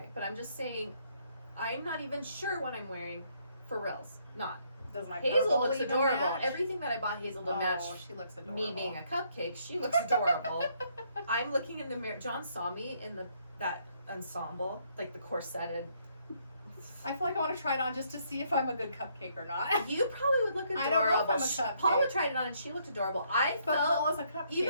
But I'm just saying, I'm not even sure what I'm wearing for reals. Not. Does my Hazel purple looks even adorable. match? Everything that I bought Hazel to match she looks adorable. me being a cupcake, she looks adorable. I'm looking in the mirror. John saw me in that ensemble, like the corseted. I feel like I want to try it on just to see if I'm a good cupcake or not. You probably would look adorable. I don't know if I'm a cupcake. Paula tried it on and she looked adorable. I But felt Paula's a cupcake.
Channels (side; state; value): both; inverted; correlation -0.70